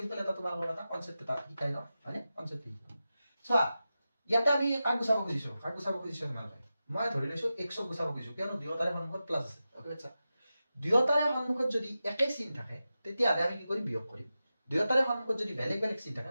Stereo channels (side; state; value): both; inverted; correlation -0.92